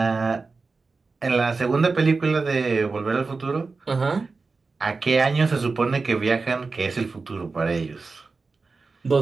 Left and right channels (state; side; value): quieter; left; 4.1 dB